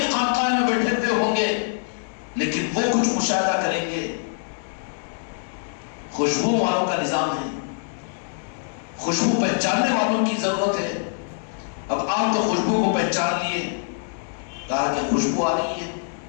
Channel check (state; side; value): silent; right; digital silence